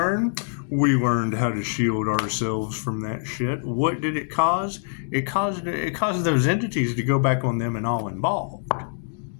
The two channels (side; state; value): right; silent; digital silence